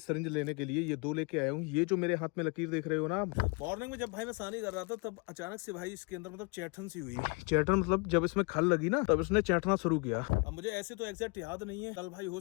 लेने के लिए। ये दो लेके आया हूँ। ये जो मेरे हाथ में लकीर देख रहे हो ना, मॉर्निंग में जब भाई मैं सानी कर रहा था तब अचानक से भाई इसके अंदर मतलब चैठन सी हुई। चैठन मतलब जब इसमें खल लगी ना तब इसने चैठना शुरू किया। अब मुझे ऐसे तो एग्जैक्ट याद नहीं है, कल भाई हो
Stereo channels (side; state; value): right; quieter; 30.1 dB